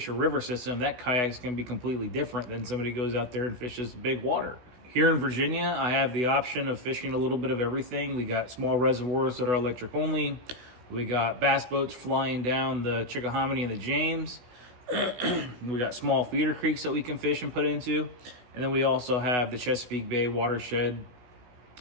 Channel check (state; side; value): late; left; 16 ms